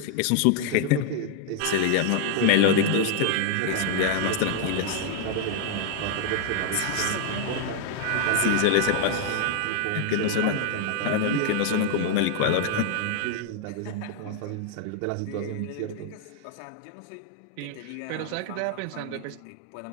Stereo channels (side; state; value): both; different; correlation 0.00